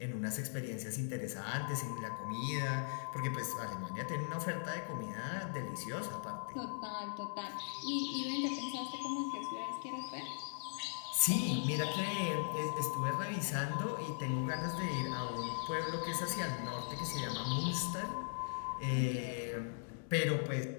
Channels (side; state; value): right; silent; digital silence